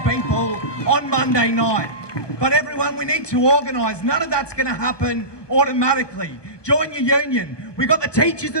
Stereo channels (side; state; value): right; late; 1.2 ms